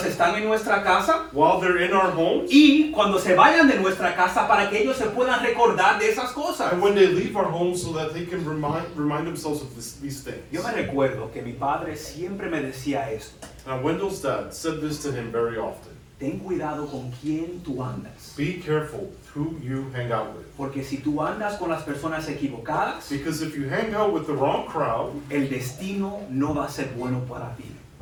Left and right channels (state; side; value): identical; both; correlation 1.00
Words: están en nuestra casa While they're in our homes, y cuando se vayan de nuestra casa para que ellos se puedan recordar de esas cosas. and when they leave our homes so that they can remind themselves of these things. Yo me recuerdo que mi padre siempre me decía esto: Now, Wendell's dad said this to him very often. ten cuidado con quién tú andas, Be careful who you hang out with. porque si tú andas con las personas equivocadas, Because if you hang out with the wrong crowd, el destino no va a ser bueno para ti.